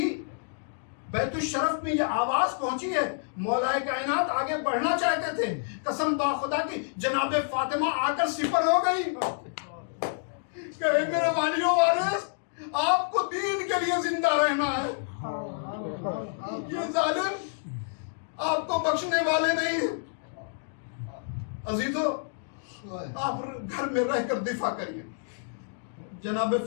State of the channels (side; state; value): right; silent; digital silence